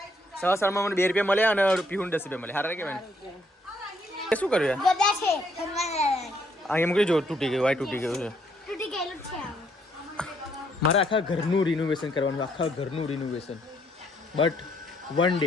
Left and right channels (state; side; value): normal; both; correlation 0.70